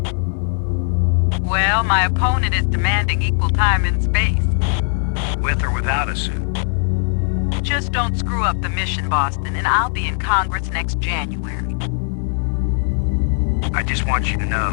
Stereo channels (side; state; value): right; silent; 57 dB below the other